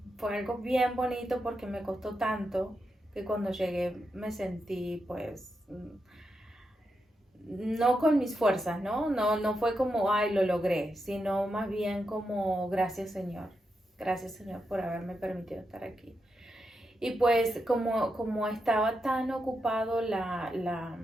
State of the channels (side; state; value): both; normal; correlation 0.85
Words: fue algo bien bonito, porque me costó tanto que cuando llegué me sentí pues no con mis fuerzas, no fue como ay lo logré, sino más bien como gracias Señor por haberme permitido estar aquí. Y pues como estaba tan ocupado la